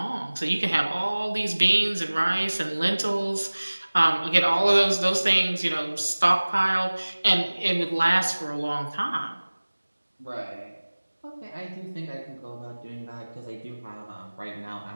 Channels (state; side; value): inverted; both; correlation -1.00